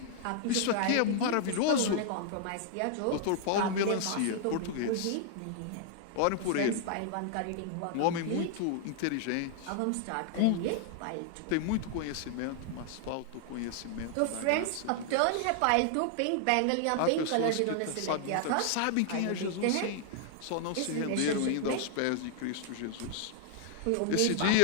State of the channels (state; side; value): different; both; correlation 0.00